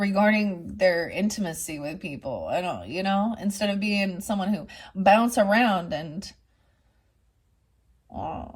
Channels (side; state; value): both; identical; correlation 1.00